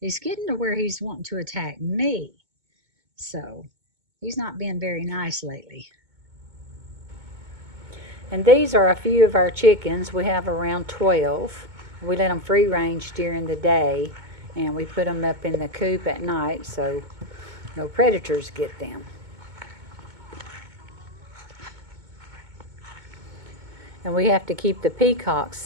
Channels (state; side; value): late; left; 2.2 ms